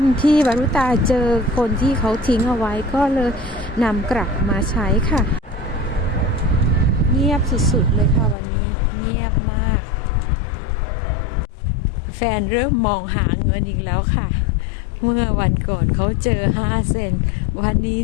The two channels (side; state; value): right; drops out; at 8.3 s